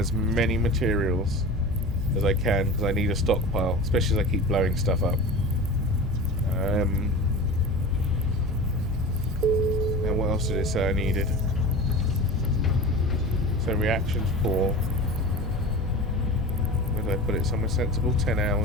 many materials as I can because I need a stockpile, especially as I keep blowing stuff up. And what else did it say I needed? So reactions 4. Where did I put it? Somewhere sensible. 10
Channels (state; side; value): normal; both; correlation 0.32